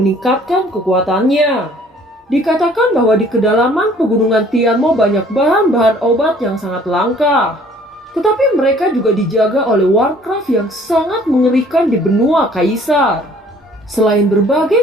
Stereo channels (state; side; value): normal; both; correlation 0.56